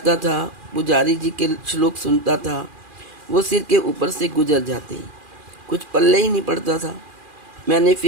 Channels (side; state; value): left; late; 2.4 ms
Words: था, पुजारी जी के श्लोक सुनता था, वो सिर के ऊपर से गुजर जाते, कुछ पल्ले ही नहीं पड़ता था। मैंने